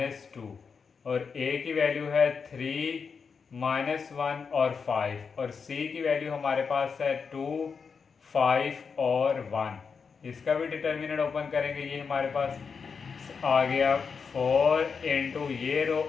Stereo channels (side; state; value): right; quieter; 5.7 dB